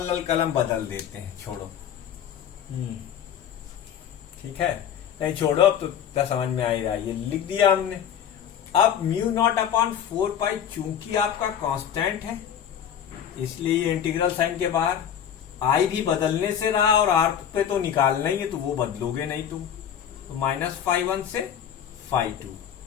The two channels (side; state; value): right; quieter; 9.1 dB